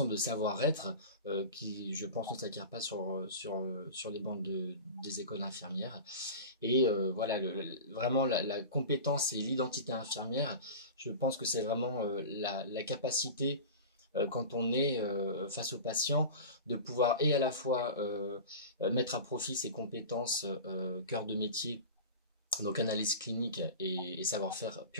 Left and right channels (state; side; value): inverted; both; correlation -0.31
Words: de savoir-être qui, je pense, ne s'acquiert pas sur les bancs des écoles infirmières. Et vraiment la compétence et l'identité infirmière, je pense que c'est vraiment la capacité quand on est face aux patients, de pouvoir et à la fois mettre à profit ses compétences cœur de métier, donc analyse clinique et savoir-faire